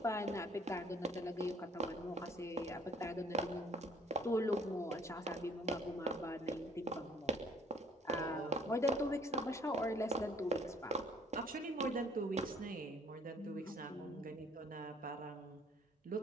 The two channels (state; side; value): normal; both; correlation 0.60